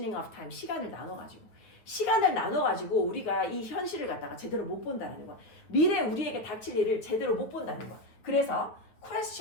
of time, 시간을 나눠가지고 우리가 이 현실을 갖다가 제대로 못 본다는 거야. 미래 우리에게 닥칠 일을 제대로 못 본다는 거야. 그래서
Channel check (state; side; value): late; right; 9.3 ms